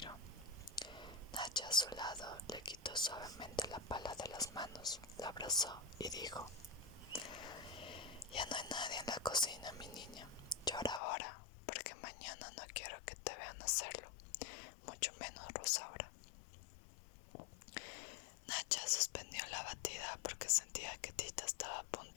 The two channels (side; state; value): right; drops out; at 11.0 s